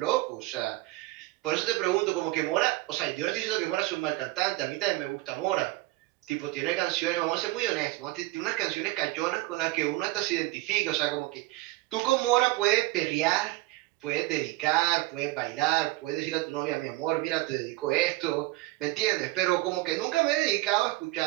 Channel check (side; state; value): left; quieter; 19.7 dB